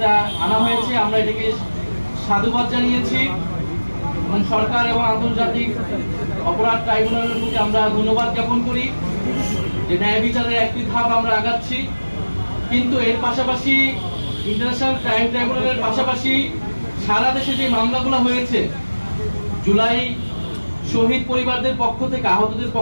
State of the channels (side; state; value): both; inverted; correlation -1.00